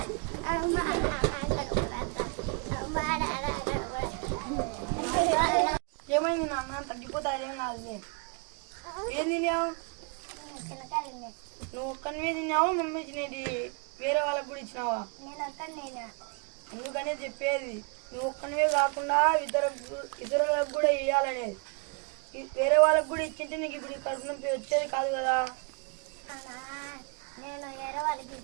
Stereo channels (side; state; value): left; quieter; 35.9 dB